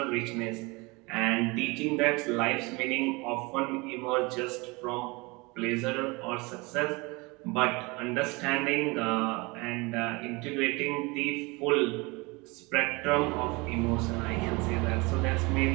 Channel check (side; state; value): left; quieter; 25.9 dB